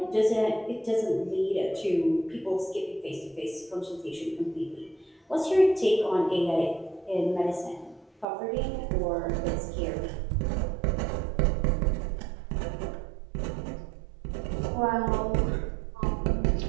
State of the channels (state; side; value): drops out; left; at 8.2 s